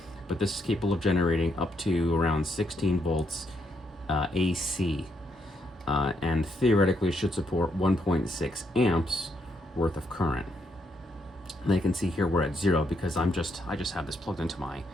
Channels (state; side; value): normal; both; correlation 0.77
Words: but this is capable of generating up to around 16 volts AC, and theoretically should support 1.6 amps worth of current. And you can see here we're at 0 because I just have this plugged into my